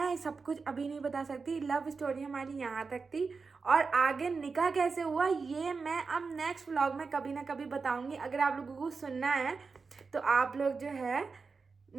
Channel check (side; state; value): left; quieter; 4.7 dB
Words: सब कुछ अभी नहीं बता सकती। लव स्टोरी हमारी यहाँ तक थी, और आगे निकाह कैसे हुआ ये मैं अब नेक्स्ट व्लॉग में कभी ना कभी बताऊंगी। अगर आप लोगों को सुनना है तो आप लोग जो है